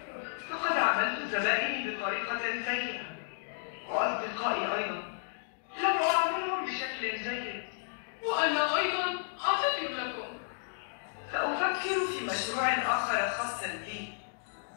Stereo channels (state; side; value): silent; right; digital silence